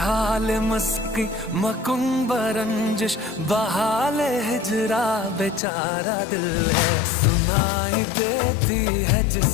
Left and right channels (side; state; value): right; drops out; at 5.6 s